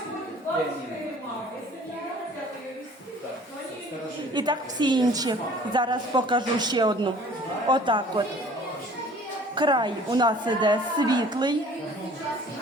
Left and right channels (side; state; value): both; normal; correlation 0.50